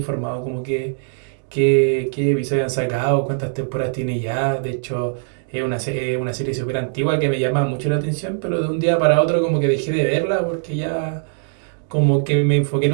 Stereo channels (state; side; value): silent; left; digital silence